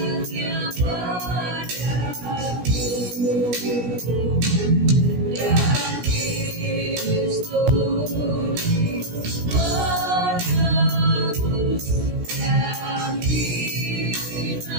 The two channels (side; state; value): left; late; 17 ms